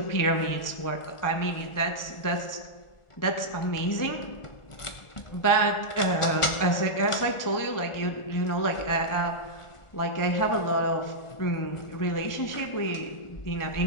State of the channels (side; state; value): right; late; 1.5 ms